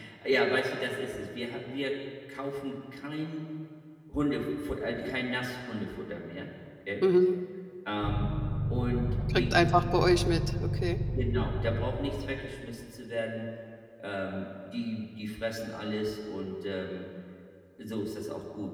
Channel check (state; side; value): identical; both; correlation 1.00